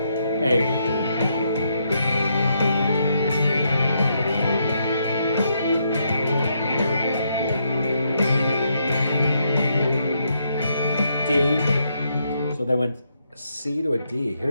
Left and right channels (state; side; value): inverted; both; correlation -0.77